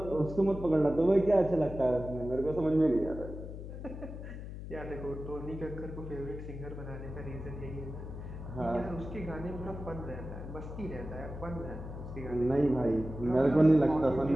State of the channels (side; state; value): left; noise; hum, 9 dB below the sound